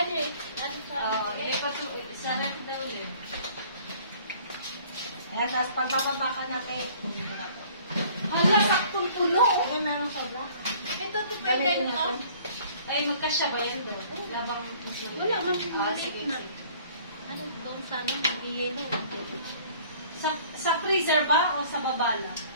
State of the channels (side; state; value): both; inverted; correlation -0.53